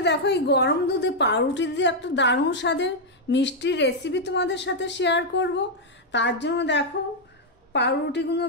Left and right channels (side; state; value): both; normal; correlation -0.02